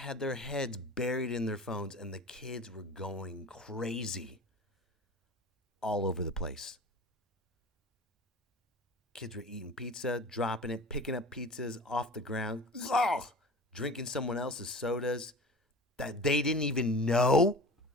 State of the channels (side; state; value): both; normal; correlation 0.37